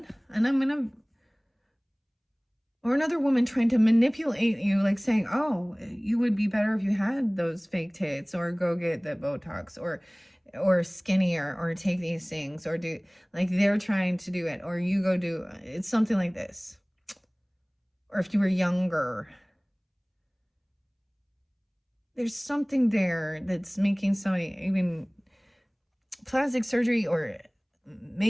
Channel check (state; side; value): identical; both; correlation 1.00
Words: and or another woman trying to manipulate you, like saying, oh, you would be better if you had those fake tits, or go get the Botox, or skinnier, or take these things, or do, like, they're trying to do it, or you go do, it's something like this. Or if you were younger, there's something there that's making somebody, even plastic surgery or